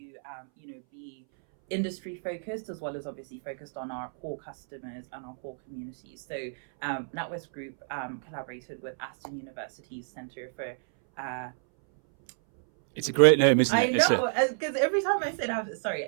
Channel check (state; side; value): silent; left; 58 dB below the other